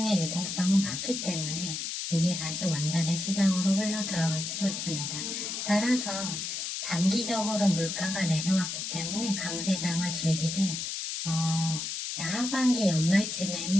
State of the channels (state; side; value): noise; left; hiss, 4 dB below the sound